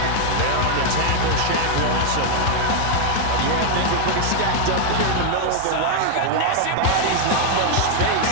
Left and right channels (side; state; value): both; different; correlation 0.00